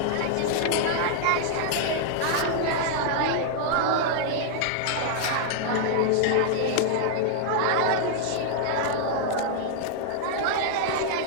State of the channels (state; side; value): different; both; correlation -0.01